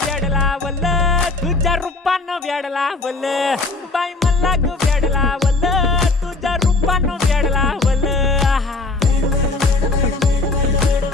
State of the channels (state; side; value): quieter; right; 3.5 dB